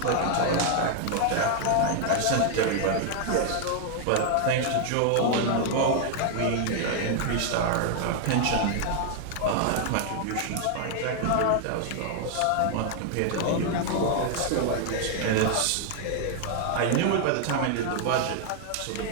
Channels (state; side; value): different; both; correlation 0.00